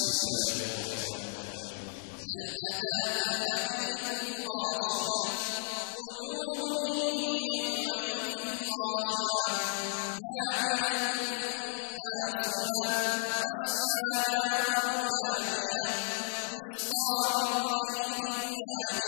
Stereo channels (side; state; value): right; silent; digital silence